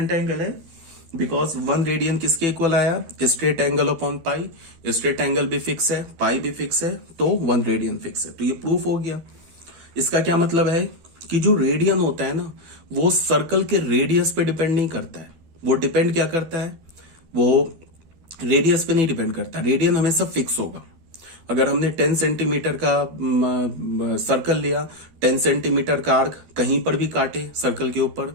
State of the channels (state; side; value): late; left; 13 ms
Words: एंगल है? बिकॉज 1 रेडियन किसके इक्वल आया? Straight angle upon pi. Straight angle भी फिक्स है, पाई भी फिक्स है, तो 1 रेडियन फिक्स है। तो ये प्रूफ हो गया। इसका क्या मतलब है कि जो रेडियन होता है ना, वो सर्कल के रेडियस पे डिपेंड नहीं करता है। वो डिपेंड क्या करता है? वो रेडियस पे नहीं डिपेंड करता। रेडियन हमेशा फिक्स होगा। अगर हमने 10 सेंटीमीटर का सर्कल लिया, 10 सेंटीमीटर का आर्क कहीं पर भी काटे सर्कल के ऊपर,